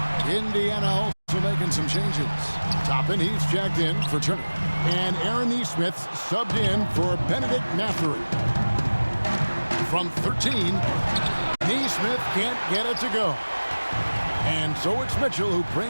Indiana also making some changes. Toppin, he's checked in for Turner. And Aaron Nesmith subbed in for Benedict Mathurin. From 13, Nesmith can't get it to go. And so it's Mitchell who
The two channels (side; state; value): both; inverted; correlation -1.00